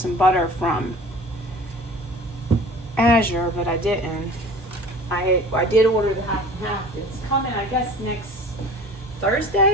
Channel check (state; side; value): normal; both; correlation 0.43